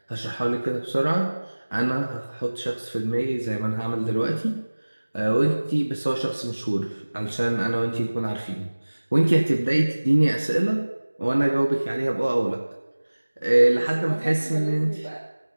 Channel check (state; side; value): inverted; both; correlation -1.00